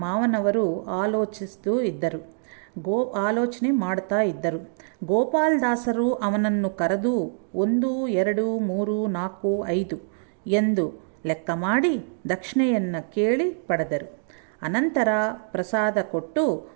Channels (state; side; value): silent; left; digital silence